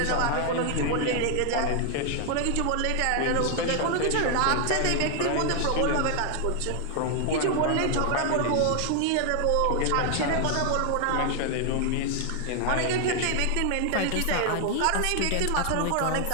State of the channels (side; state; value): both; different; correlation 0.00